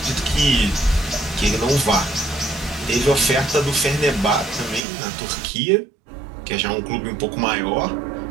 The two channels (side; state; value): left; drops out; at 4.8 s